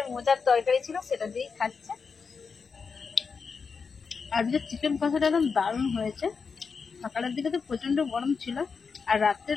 মোচার তরকারি ছিল সেটা দিয়েই খাচ্ছে। আজকে চিকেন কষাটা একদম দারুণ হয়েছে। সকালের দিকে তো প্রচন্ড গরম ছিল, আর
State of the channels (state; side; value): quieter; right; 5.3 dB